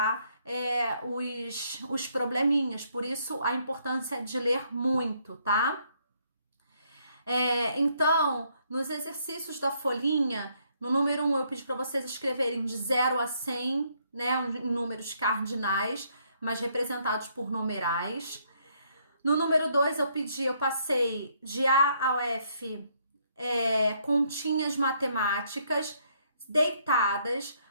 os probleminhas, por isso a importância de ler muito, tá? Então, nos exercícios da folhinha, no número 1 eu pedi para vocês escreverem de 0 a 100, né, em números cardinais, mas representados por numerais. No número 2 eu passei de A ao F, continhas matemáticas deitadas,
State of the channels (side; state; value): both; inverted; correlation -0.70